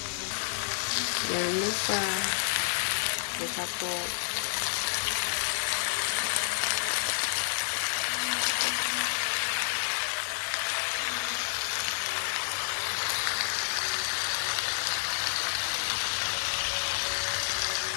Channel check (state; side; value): silent; right; digital silence